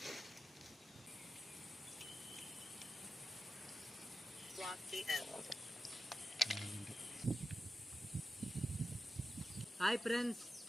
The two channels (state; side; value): normal; both; correlation 0.92